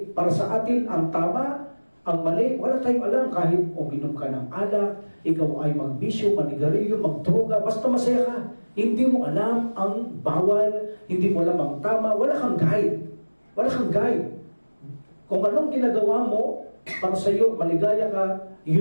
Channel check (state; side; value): inverted; both; correlation -1.00